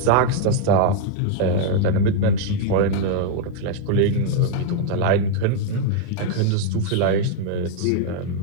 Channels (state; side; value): different; both; correlation 0.00